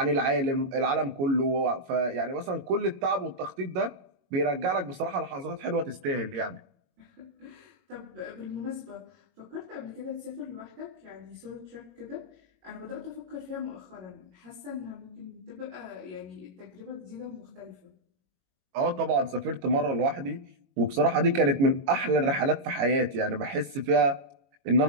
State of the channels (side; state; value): left; late; 22 ms